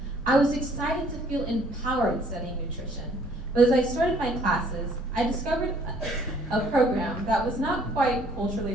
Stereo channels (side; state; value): both; normal; correlation 0.60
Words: I was excited to feel empowered studying nutrition, but as I started my classes, I discovered a program that was not quite culturally